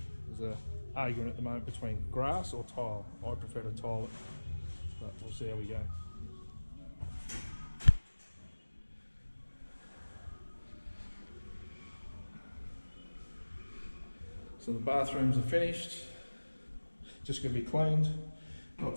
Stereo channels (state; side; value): inverted; both; correlation -1.00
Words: There's an argument at the moment between grass or tile. I prefer to tile it, but we'll see how we go. So the bathrooms are finished, just going to be cleaned, not